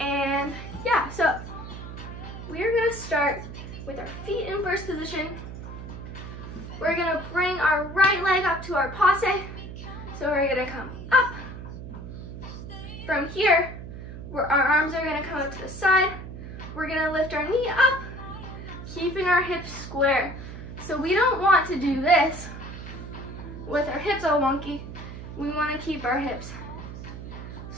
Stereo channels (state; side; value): noise; right; hum, 10 dB below the sound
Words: yeah, so we're gonna start with our feet in first position. We're gonna bring our right leg up to our passe. So we're gonna come up. From here, our arms are gonna come up to the side. We're gonna lift our knee up, keeping our hips square. So we don't want to do this with our hips all wonky. We wanna keep our hips